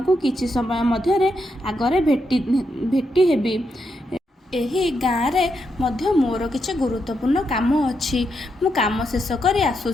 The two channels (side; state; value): both; normal; correlation 0.82